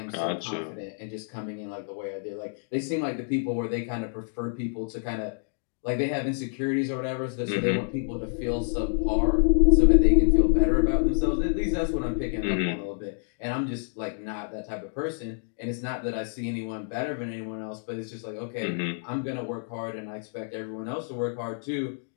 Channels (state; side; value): silent; right; digital silence